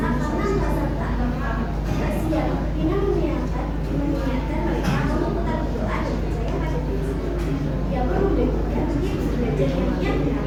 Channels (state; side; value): identical; both; correlation 1.00